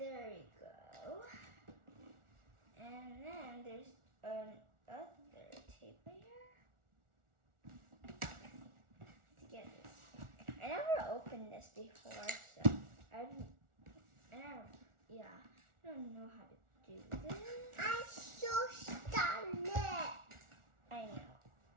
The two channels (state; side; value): late; left; 1.4 ms